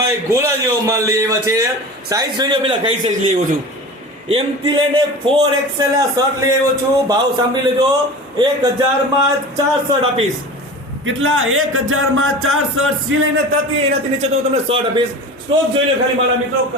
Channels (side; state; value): both; normal; correlation 0.34